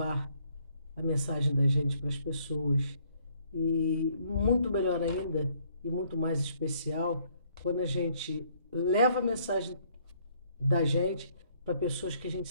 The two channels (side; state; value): both; inverted; correlation -0.66